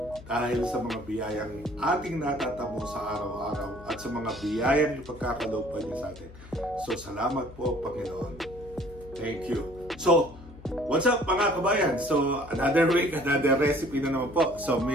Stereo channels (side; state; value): left; noise; hum, 18 dB below the sound